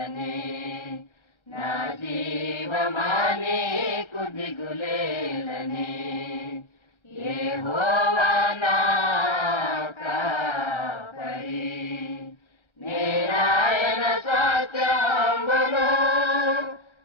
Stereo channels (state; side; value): late; right; 1.3 ms